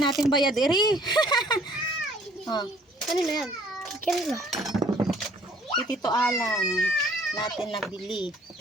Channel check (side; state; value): both; normal; correlation 0.58